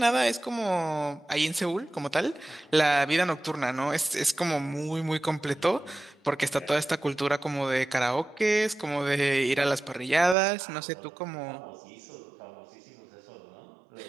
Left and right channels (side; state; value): left; drops out; at 10.4 s